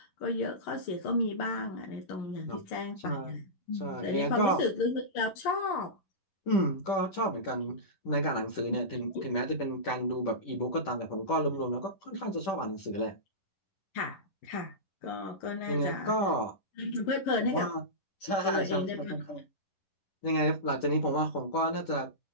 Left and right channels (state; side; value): late; right; 10 ms